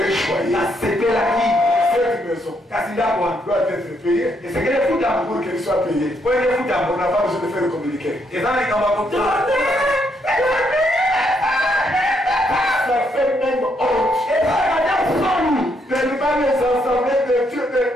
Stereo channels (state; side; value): normal; both; correlation 0.75